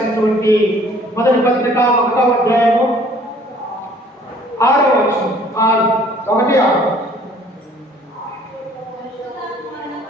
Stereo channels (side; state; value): both; normal; correlation 0.56